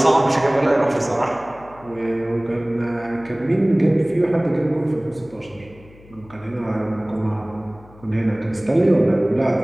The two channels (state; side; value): noise; left; hum, 24 dB below the sound